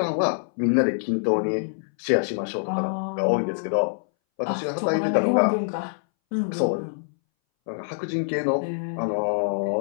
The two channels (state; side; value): silent; right; 61 dB below the other